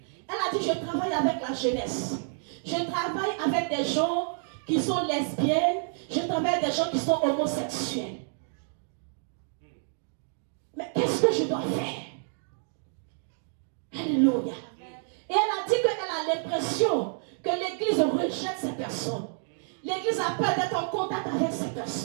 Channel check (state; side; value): silent; left; digital silence